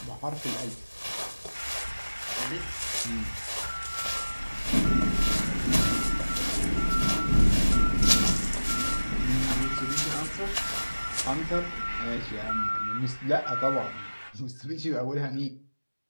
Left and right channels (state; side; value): inverted; both; correlation -1.00